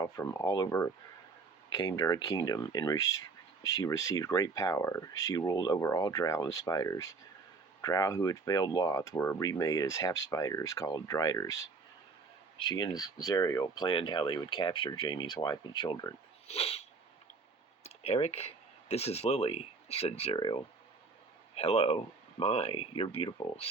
from all over came to her kingdom, and she received great power. She ruled over all Drow and spiders. Drow who had failed Lolth were remade as half-spiders called Driders. She and Zariel planned how they would capture Jamie's wife and children. "Eric, this is Lily," said Zariel. "Hello. My, you're beautiful,"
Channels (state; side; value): quieter; left; 4.3 dB